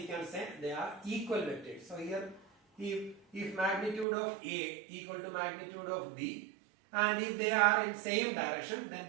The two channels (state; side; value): drops out; left; at 4.0 s